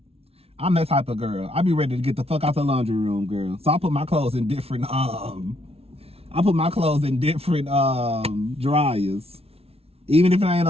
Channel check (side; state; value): left; late; 0.29 ms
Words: that type of girl. I be ready to get the fuck out the laundry room, girl. So I put my clothes in different, dryers. Even if it ain't